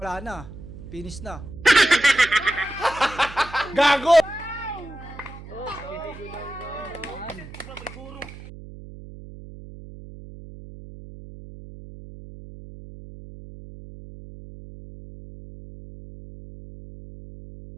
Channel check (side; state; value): right; noise; hum, 15 dB below the sound